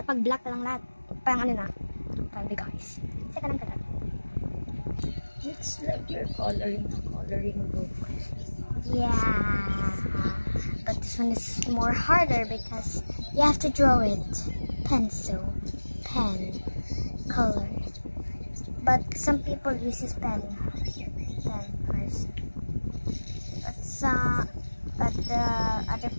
pag black na lang lahat. Parang ano na, parang big eyes. Kasi kailangan ka dot. It's like you're coloring a coloring book. Yeah, but this one is more harder because you have to draw it. Pencil, pen, color. But some people uses pen first. But the other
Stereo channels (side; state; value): both; inverted; correlation -1.00